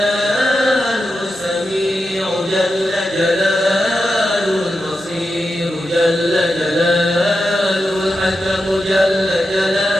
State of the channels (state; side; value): normal; both; correlation 0.89